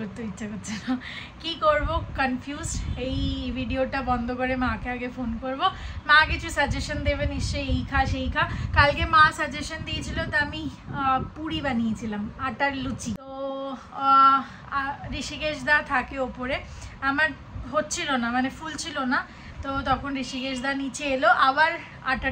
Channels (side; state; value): both; identical; correlation 1.00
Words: ইচ্ছা করছে না। কি করব, কনফিউজড। এই ভিডিওটা বন্ধ করে মাকে আগে ফোন করব, মা কিছু সাজেশন দেবে নিশ্চয়ই, এই খা সেই খা। কালকে মা সাজেশন দিয়েছিল, তো আমি পুরি বানিয়েছিলাম, আটার লুচি। তো ঋষিকেশ দা থাকে ওপরে, আমার হচ্ছিল না, মানে ফুল ছিল না। তো তখন ঋষিকেশ দা নিচে এলো, আবার